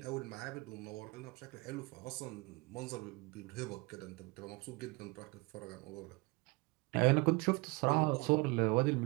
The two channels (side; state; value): left; quieter; 26.2 dB